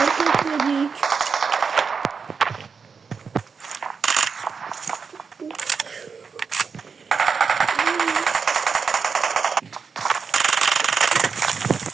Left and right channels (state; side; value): quieter; left; 5.5 dB